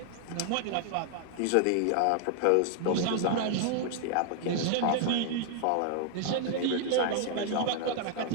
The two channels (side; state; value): both; different; correlation 0.00